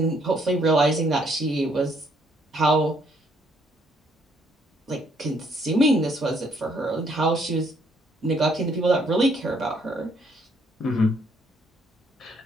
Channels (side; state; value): both; normal; correlation 0.68